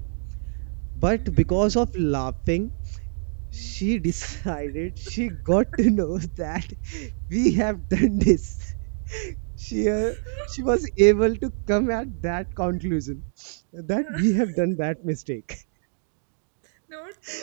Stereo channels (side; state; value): left; silent; digital silence